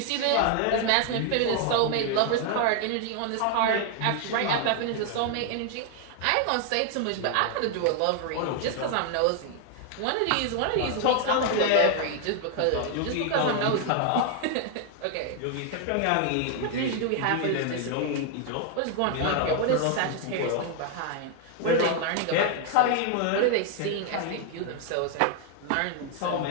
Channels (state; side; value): different; both; correlation 0.00